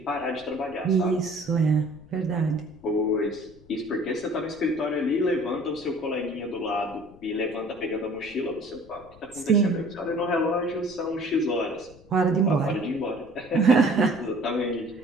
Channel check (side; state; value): left; noise; rumble, 24 dB below the sound